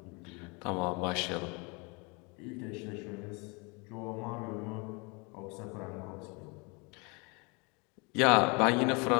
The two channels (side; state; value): right; quieter; 30.1 dB